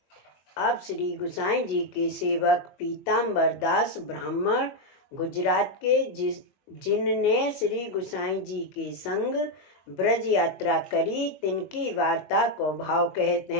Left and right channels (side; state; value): right; late; 21 ms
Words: अब श्री गोसाई जी के सेवक पीताम्बर दास ब्राह्मण गुजरात के जिनने श्री गोसाई जी के संग ब्रज यात्रा करी, तिनकी वार्ता को भाव कहते